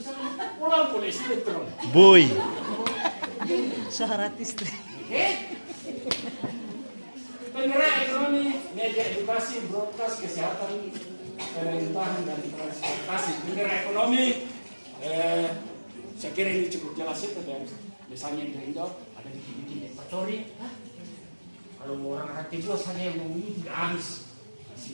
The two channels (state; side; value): inverted; both; correlation -1.00